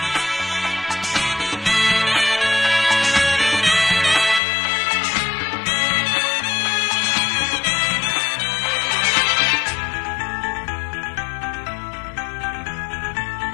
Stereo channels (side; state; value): right; drops out; at 4.4 s